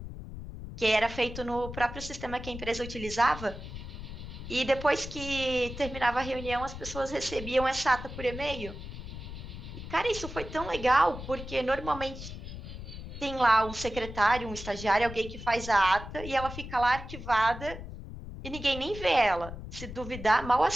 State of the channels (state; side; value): noise; left; rumble, 10 dB below the sound